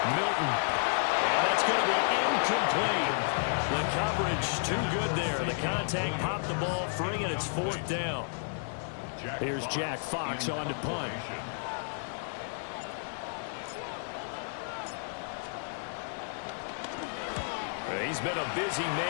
Milton. And that's going to be incomplete. The coverage too good there. The contact popped the ball free, and it's 4th down. Here's Jack Fox on to punt. He's been a busy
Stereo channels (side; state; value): right; silent; 57 dB below the other